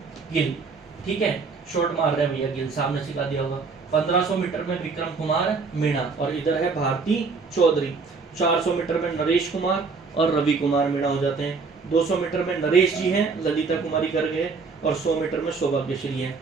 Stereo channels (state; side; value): quieter; left; 4.6 dB